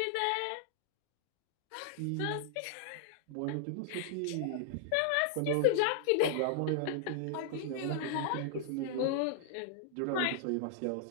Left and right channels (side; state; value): both; different; correlation -0.01